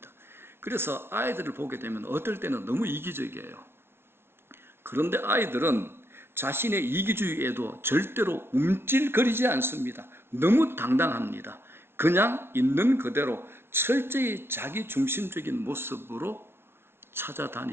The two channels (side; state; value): left; late; 0.12 ms